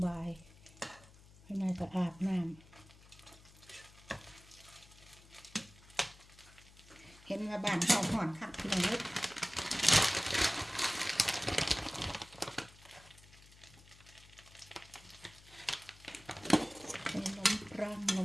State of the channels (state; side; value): noise; left; hum, 23 dB below the sound